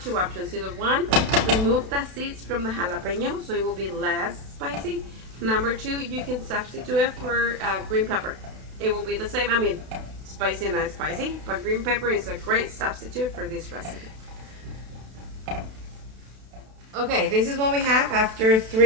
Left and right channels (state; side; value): late; left; 32 ms